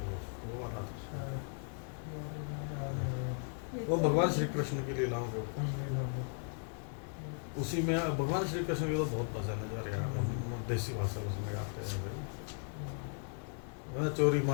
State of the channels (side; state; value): right; silent; 53 dB below the other